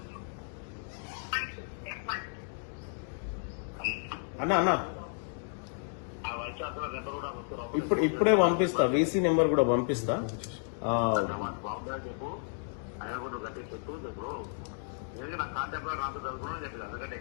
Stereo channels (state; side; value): silent; right; 56 dB below the other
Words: అన్న ఇప్పుడే పంపిస్తా, వీసీ నెంబర్ కూడా పంపిస్తా. చెప్పు ఆయన కూడా గట్టి చెప్పు చెప్పు నా కాంటాక్ట్ నాకు చదువుకున్నా చెప్పి అందుకంటే